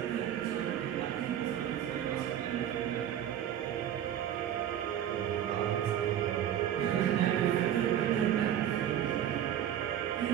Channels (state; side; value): quieter; left; 10.6 dB